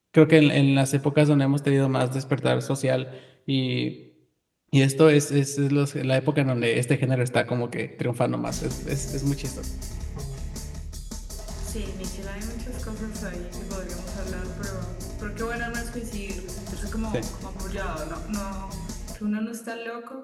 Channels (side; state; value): both; identical; correlation 1.00